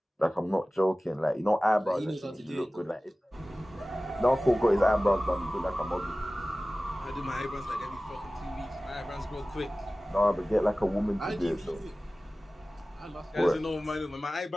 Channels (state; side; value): normal; both; correlation 0.97